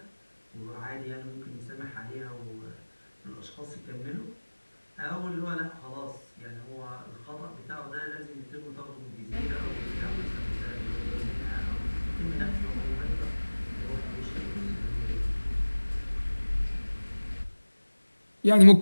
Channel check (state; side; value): inverted; both; correlation -1.00